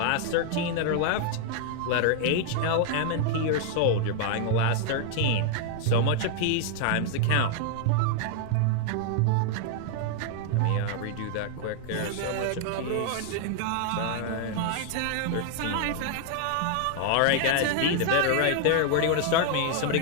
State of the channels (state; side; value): different; both; correlation 0.00